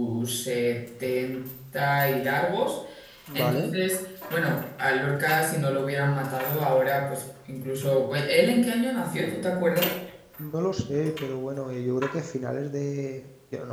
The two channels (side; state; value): both; identical; correlation 1.00